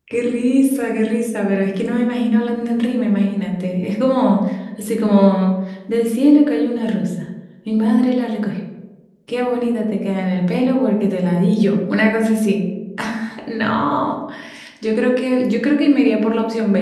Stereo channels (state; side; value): identical; both; correlation 1.00